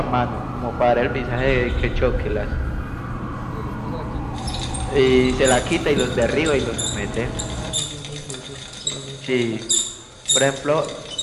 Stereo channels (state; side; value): identical; both; correlation 1.00